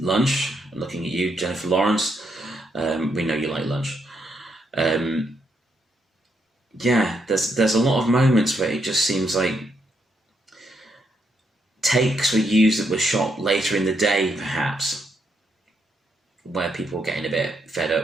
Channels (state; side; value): normal; both; correlation 0.77